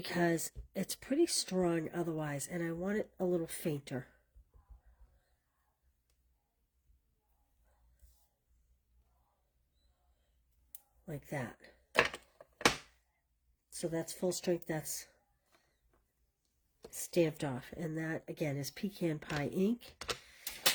it's pretty strong otherwise, and I want it a little fainter. Like that. So that's full strength, that's stamped off. And that, again, is Pecan Pie ink.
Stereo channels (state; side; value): identical; both; correlation 1.00